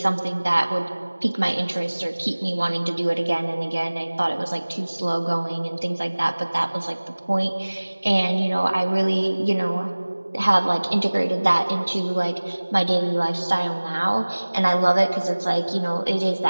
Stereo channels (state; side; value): inverted; both; correlation -1.00